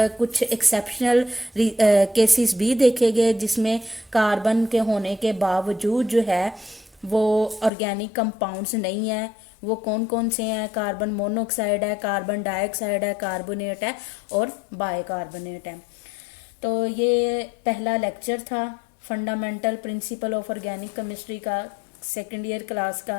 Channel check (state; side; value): drops out; right; at 7.7 s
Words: कुछ एक्सेप्शनल केसेस भी देखे गए जिसमें कार्बन के होने के बावजूद जो है वो ऑर्गेनिक कंपाउंड्स नहीं है। वो कौन कौन से हैं? कार्बन मोनोऑक्साइड है, कार्बन डाइऑक्साइड है, कार्बोनेट है और बाइकार्बोनेट है। तो ये पहला लेक्चर था fundamental principle of organic chemistry का, सेकेंड ईयर क्लास